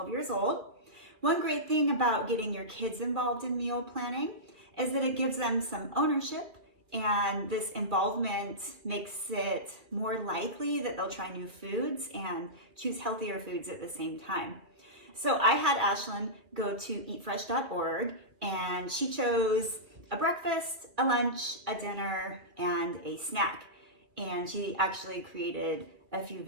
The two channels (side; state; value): left; late; 2.6 ms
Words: years old. One great thing about getting your kids involved in meal planning is that it gives them some ownership, and this involvement makes it more likely that they'll try new foods and choose healthier foods at the same time. So I had Ashlyn go to eatfresh.org, and she chose a breakfast, a lunch, a dinner, and a snack. And she actually created a few